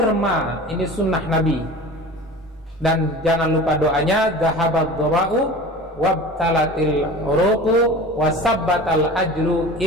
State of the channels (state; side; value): normal; both; correlation 0.37